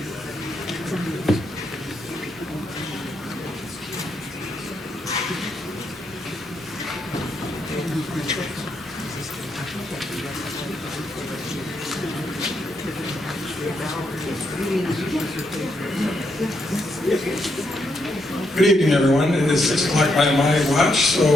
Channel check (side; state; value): both; normal; correlation 0.79